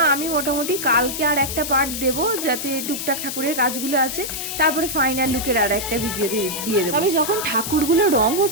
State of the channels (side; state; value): left; noise; hiss, 5 dB below the sound